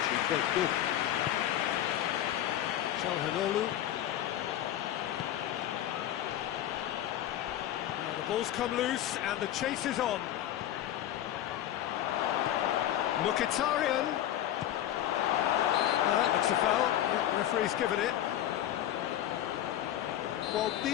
quite good. Çalhanoğlu. Now the ball's come loose and the chase is on. Mkhitaryan. That's a foul. Yeah, referee's given it. Well,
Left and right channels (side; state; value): right; quieter; 12.1 dB